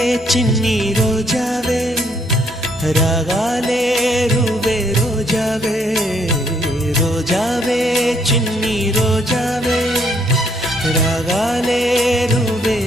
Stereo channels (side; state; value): both; normal; correlation 0.69